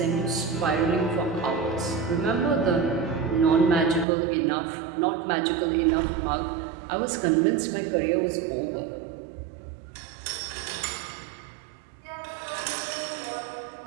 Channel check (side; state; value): left; drops out; at 4.0 s